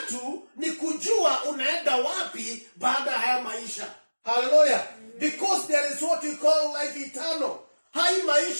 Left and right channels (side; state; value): both; inverted; correlation -1.00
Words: ni kujua unaenda wapi baada ya haya maisha. Haleluya. Because there is what we call life eternal. Hai